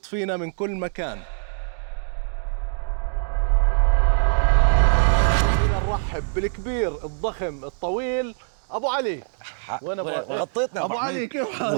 فينا من كل مكان. نرحب بالكبير الضخم الطويل ابو علي. وين غطيتنا ابو علي، كيف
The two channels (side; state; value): left; silent; digital silence